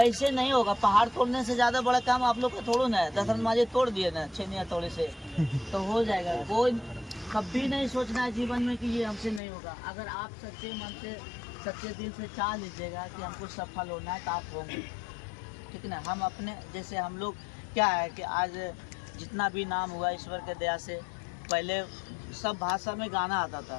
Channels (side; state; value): right; drops out; at 9.4 s